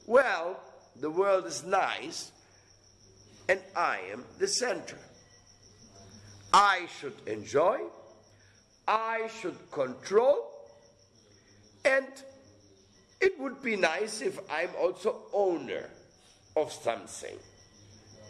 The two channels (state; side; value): identical; both; correlation 1.00